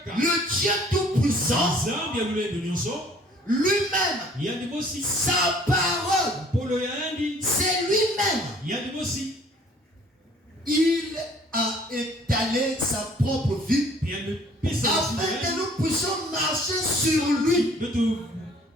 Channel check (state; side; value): normal; both; correlation 0.56